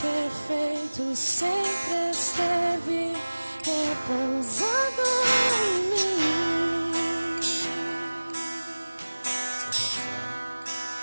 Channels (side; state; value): both; inverted; correlation -1.00